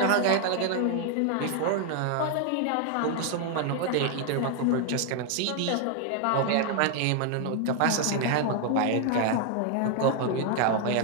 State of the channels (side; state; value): both; different; correlation 0.00